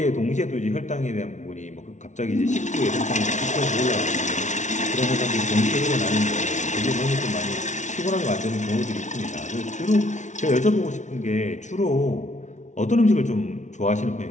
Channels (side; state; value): right; late; 0.35 ms